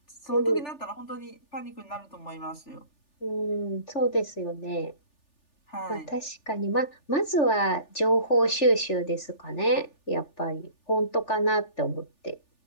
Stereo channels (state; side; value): late; right; 3.4 ms